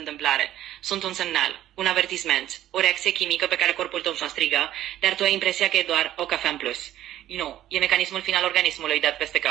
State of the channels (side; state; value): left; quieter; 12.9 dB